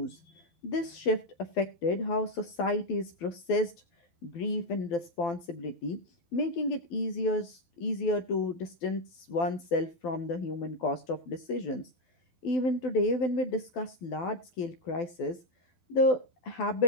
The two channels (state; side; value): late; right; 12 ms